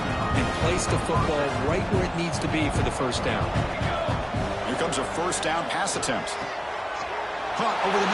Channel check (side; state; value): both; identical; correlation 1.00